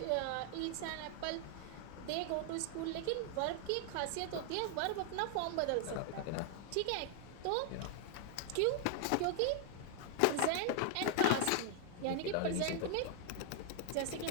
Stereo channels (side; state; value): both; different; correlation 0.00